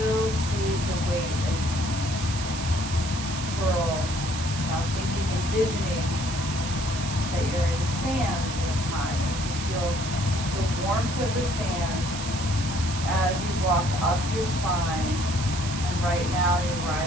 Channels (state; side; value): noise; right; hiss, 8 dB below the sound